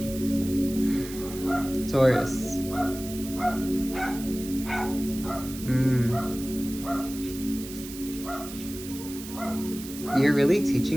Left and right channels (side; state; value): right; noise; hiss, 13 dB below the sound